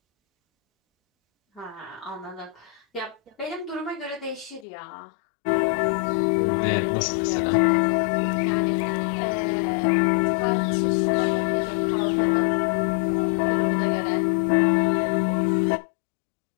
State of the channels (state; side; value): drops out; right; at 4.7 s